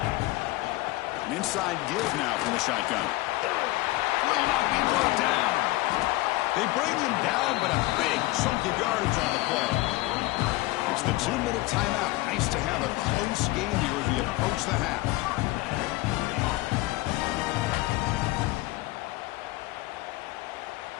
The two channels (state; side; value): quieter; right; 19.5 dB